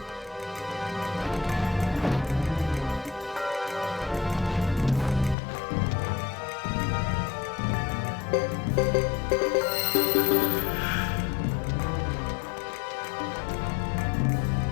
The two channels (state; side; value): drops out; right; at 5.4 s